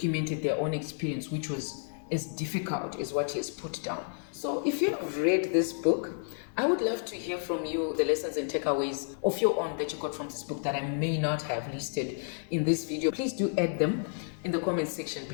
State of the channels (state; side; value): silent; right; 57 dB below the other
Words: their own experience, which was as difficult as what he has put down. So if you've read this book, I would love to hear from you the lessons and takeaways of your own that you got from this book that I may not have listed in this video. Please do add them in the comment section